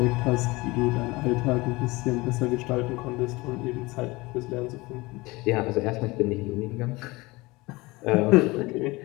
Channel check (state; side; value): quieter; right; 22.4 dB